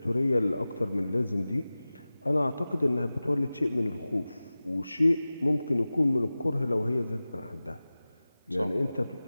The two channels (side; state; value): both; inverted; correlation -0.97